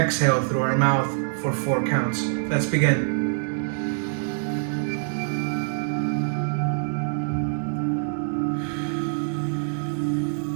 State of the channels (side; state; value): left; silent; digital silence